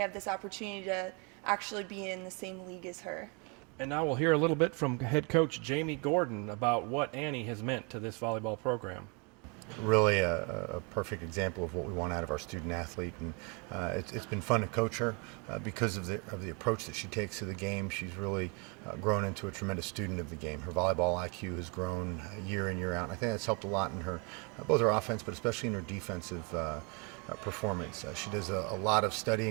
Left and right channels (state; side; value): quieter; left; 32.8 dB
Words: this opportunity to actually be in the same league as her. And now we'll hear a little bit from head coach Jamie Gordon about what Annie has meant to this volleyball program. Really a perfect example of what we want out of our student athlete, and it's been fun to coach her because of the approach that she takes to the game. She's really grown into a tremendous student of the game. Her volleyball IQ has grown year in, year out, and I think that's helped a lot in her both her offense, but especially in her defensive performance. She does a lot of